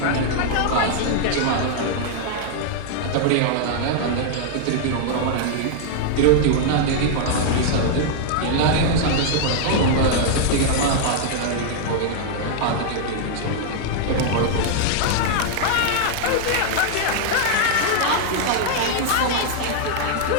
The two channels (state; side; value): different; both; correlation -0.01